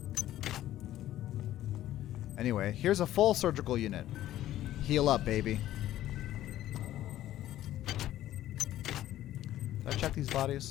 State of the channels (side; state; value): right; quieter; 13.4 dB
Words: Anyway, here's a full surgical unit. Heal up, baby. Did I check these